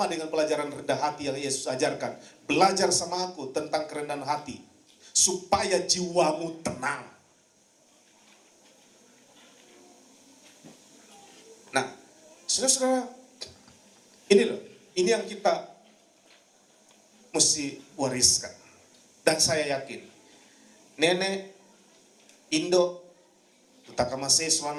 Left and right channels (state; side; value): identical; both; correlation 1.00